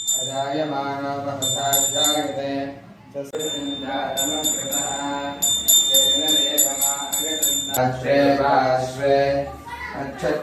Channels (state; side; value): identical; both; correlation 1.00